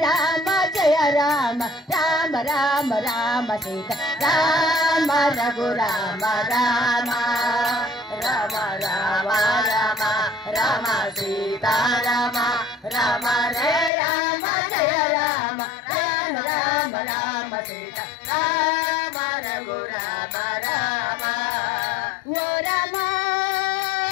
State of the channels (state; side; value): drops out; right; at 13.9 s